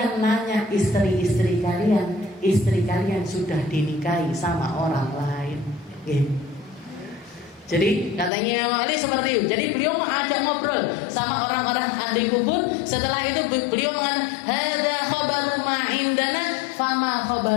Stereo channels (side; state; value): right; drops out; at 8.3 s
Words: nanya istri kalian sudah dinikahi sama orang lain. Jadi katanya Imam Ali seperti itu. Jadi beliau mengajak ngobrol sama orang-orang ahli kubur. Setelah itu beliau mengatakan, hadza khabaru ma indana fama